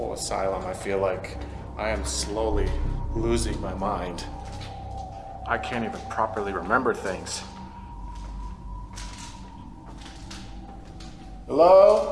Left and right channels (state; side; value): identical; both; correlation 1.00